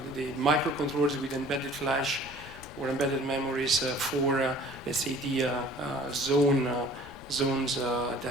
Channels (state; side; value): noise; left; rumble, 17 dB below the sound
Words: microcontrollers with embedded flash or embedded memories for, let's say, the zones